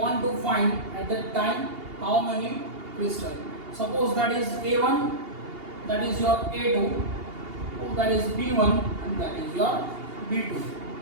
to find at that time how many crystals. Suppose that is A1, that is your A2, that is B1 and that is your B2.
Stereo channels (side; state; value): left; late; 2.8 ms